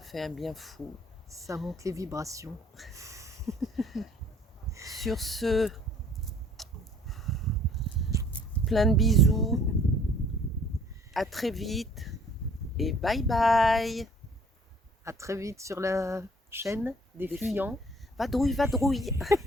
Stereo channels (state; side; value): normal; both; correlation 0.56